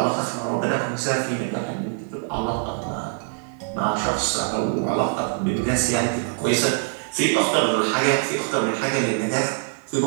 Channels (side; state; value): left; silent; 63 dB below the other